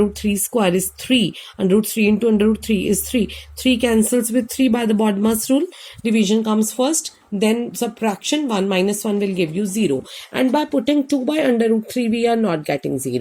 root 3 square is 3. Under root 3 into under root 3 is 3. 3 cancels with 3 by the BODMAS rule. Division comes first. Then subtraction, 1 minus 1 will give you 0. And by putting 2 by under root 3, we are not getting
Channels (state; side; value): identical; both; correlation 1.00